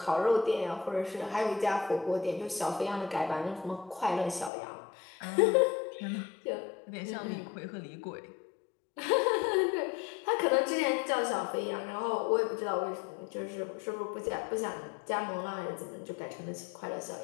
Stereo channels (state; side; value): drops out; right; at 4.5 s